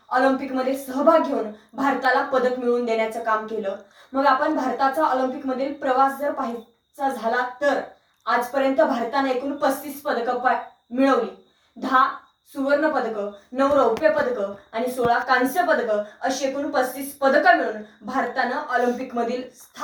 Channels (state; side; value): identical; both; correlation 1.00